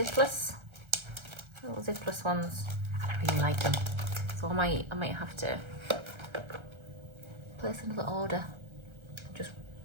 ones. I really like them. So I might have to place another order. Just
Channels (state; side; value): late; left; 1.3 ms